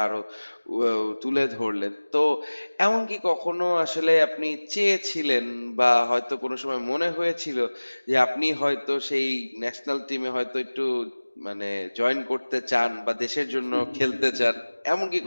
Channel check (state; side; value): inverted; both; correlation -1.00